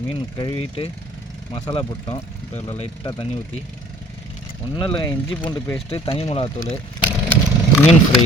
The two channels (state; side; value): normal; both; correlation 0.52